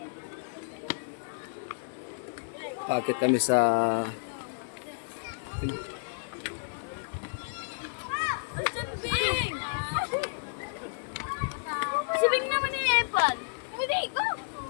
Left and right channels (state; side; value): silent; right; digital silence